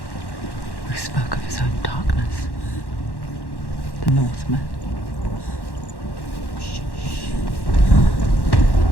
who spoke of his own darkness. The Northmen.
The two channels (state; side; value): late; right; 1.1 ms